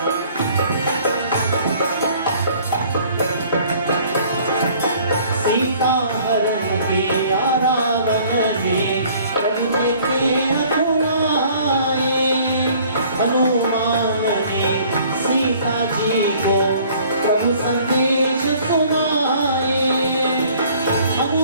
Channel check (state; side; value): inverted; both; correlation -0.55